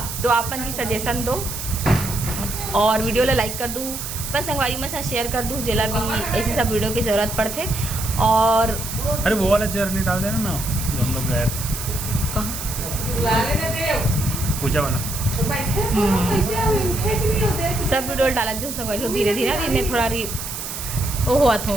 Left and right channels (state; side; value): noise; right; hiss, 7 dB below the sound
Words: तो आपन भी सजेशन दो और वीडियो ला लाइक कर दूँ, बस संगवारी में साथ शेयर कर दूँ, जेला भी ऐसी सब वीडियो की ज़रूरत पड़ते। और अरे वो वाला चेयर नहीं डाल देना ना, हम लोग गए पूजा वाला सब वीडियो डाला जो संगवारी हो। धीरे धीरे अभी मैं थोड़ा वो हुआ था,